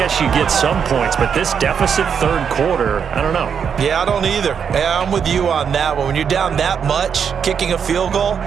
you get some points, but this deficit 3rd quarter, I don't know. Yeah, I don't either. Yeah, I'm with you on that one. When you're down that much, kicking a field goal,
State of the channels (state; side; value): quieter; left; 7.2 dB